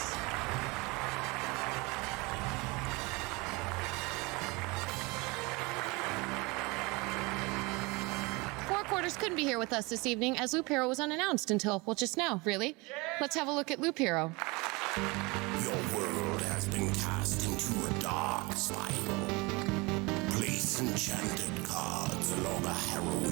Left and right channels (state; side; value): quieter; left; 25.6 dB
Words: Four Quarters couldn't be here with us this evening as Loop Hero was unannounced until, well, just now, really. Let's have a look at Loop Hero. Your world has been cast into a dark spiral. Place enchanted cards along a